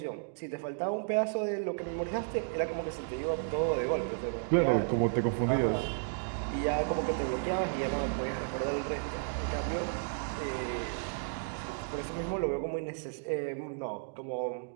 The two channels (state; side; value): silent; left; digital silence